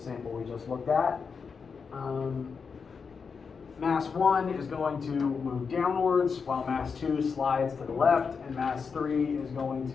we just looked at. Mass 1 is going to move downwards, while mass 2 slides to the left, and mass 3 is going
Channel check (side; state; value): right; quieter; 5.6 dB